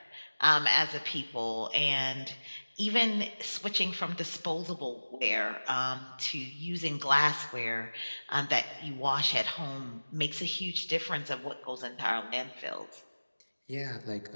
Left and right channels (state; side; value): inverted; both; correlation -1.00